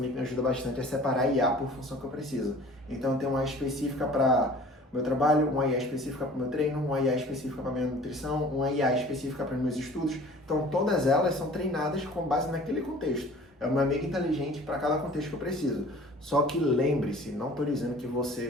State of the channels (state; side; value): normal; both; correlation 0.47